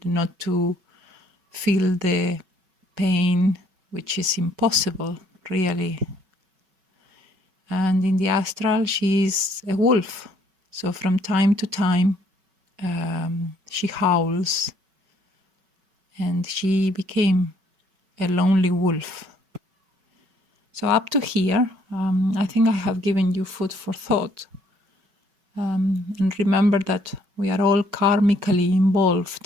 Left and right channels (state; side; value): late; left; 5.3 ms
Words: not to feel the pain, which is impossible, really. And in the astral, she is a wolf. So from time to time, she howls, and she became a lonely wolf. So up to here, I think I have given you food for thought. And remember that we are all karmically